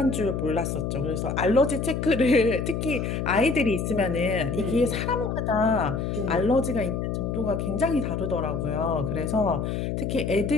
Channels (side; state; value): left; noise; hum, 2 dB below the sound